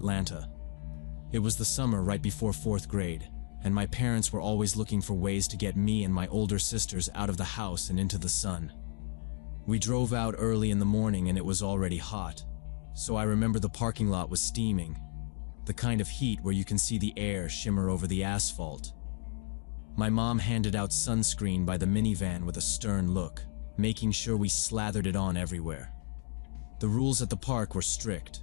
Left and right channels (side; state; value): right; silent; digital silence